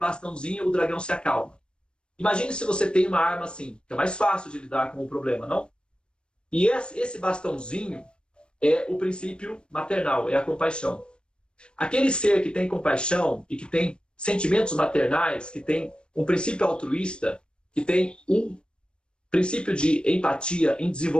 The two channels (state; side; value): late; right; 0.053 ms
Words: e o dragão se acalma. Imagine se você tem uma arma assim, que é mais fácil de lidar com o problema, não? E esse bastãozinho é o princípio maternal, é a compaixão. Aquele ser que tem compaixão e que tem sentimentos maternais, que tem um princípio altruísta, que tem um princípio de empatia em